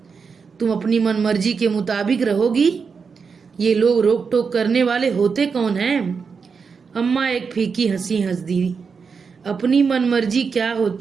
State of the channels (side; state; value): left; quieter; 5.5 dB